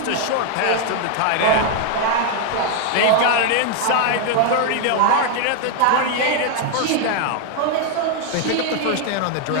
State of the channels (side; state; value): both; different; correlation 0.00